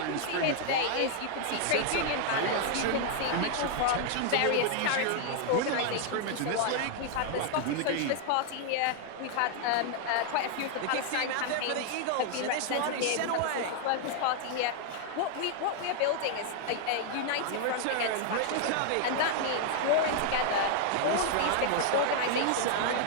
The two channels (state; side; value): different; both; correlation 0.00